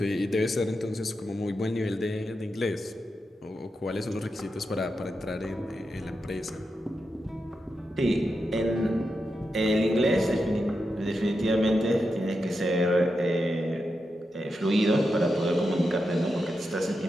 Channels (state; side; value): normal; both; correlation 0.87